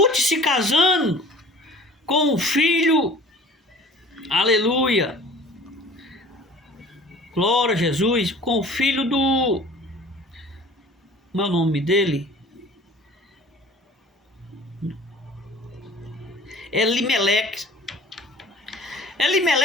se casando com o filho, aleluia, glória a Jesus, com o filho do, como é o nome dele? Elimeleque.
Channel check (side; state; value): both; normal; correlation 0.47